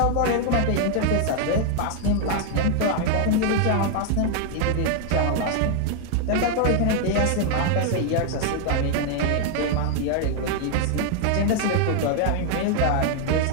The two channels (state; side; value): different; both; correlation 0.00